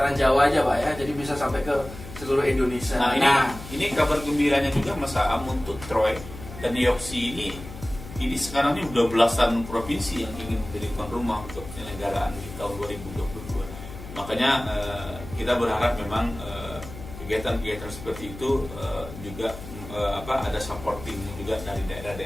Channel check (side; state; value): left; noise; hum, 13 dB below the sound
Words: Jawa aja Pak ya, jadi bisa sampai ke seluruh Indonesia. Nah, ini kabar gembiranya juga Mas Am untuk Troy dan Yoksi ini sekarang ini udah belasan provinsi yang ingin menjadi tuan rumah untuk penyelenggaraan di tahun 2022. Makanya kita berharap memang kegiatan-kegiatan seperti itu juga ada supporting juga dari